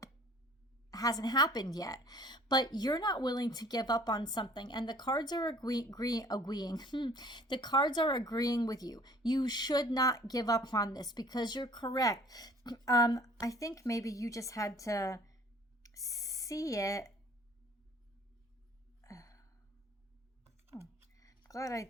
hasn't happened yet. But you're not willing to give up on something, and the cards are agreeing. The cards are agreeing with you. You should not give up on this, because you're correct. I think maybe you just had to see it. Oh, glad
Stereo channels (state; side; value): normal; both; correlation 0.52